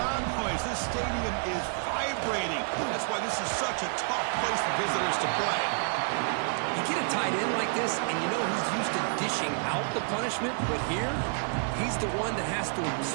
noise. This stadium is vibrating. That's why this is such a tough place for visitors to play. You get a tight end like this, and you know he's used to dishing out the punishment, but here, he's the one that has to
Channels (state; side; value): silent; left; 58 dB below the other